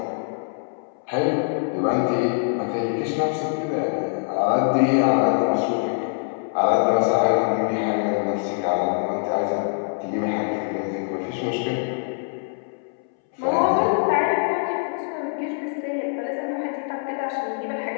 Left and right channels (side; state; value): right; silent; 63 dB below the other